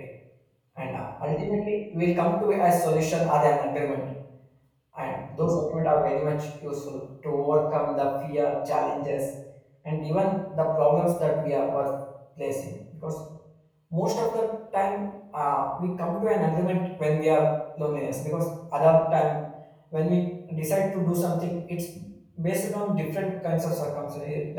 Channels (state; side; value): identical; both; correlation 1.00